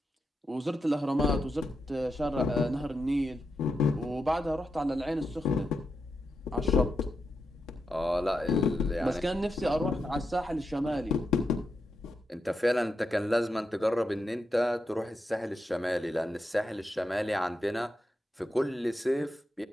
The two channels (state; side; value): normal; both; correlation 0.86